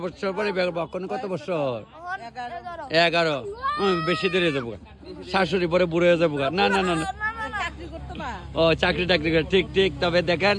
বছর পরে বিয়ে করবো। কত বছর? 11। বেশি দেরি হয়ে যাবো, শাশুড়ি পরে বুড়ো হয়ে যাবো। না না না না, ও চাকরি টাকরি করে। ঠিক ঠিক। তবে দেখেন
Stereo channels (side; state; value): both; identical; correlation 1.00